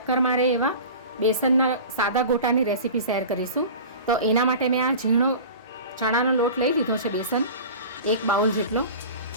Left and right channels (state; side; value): inverted; both; correlation -0.37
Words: મારે એવા બેસનના સાદા ગોટાની રેસીપી શેર કરીશું. તો એના માટે મેં આ ઝીણો ચણાનો લોટ લઈ લીધો છે, બેસન 1 બાઉલ જેટલો.